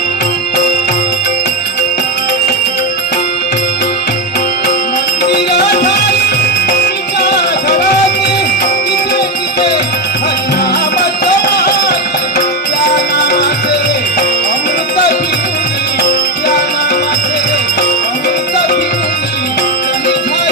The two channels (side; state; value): both; normal; correlation 0.10